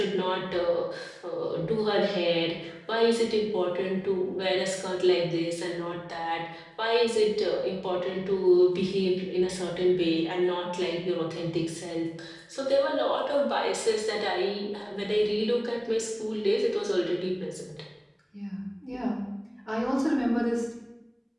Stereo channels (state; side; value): identical; both; correlation 1.00